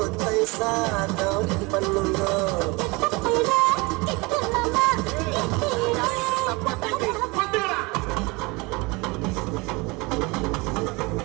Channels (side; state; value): left; quieter; 25.7 dB